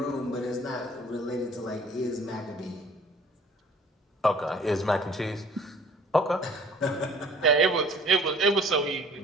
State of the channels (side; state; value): both; normal; correlation 0.52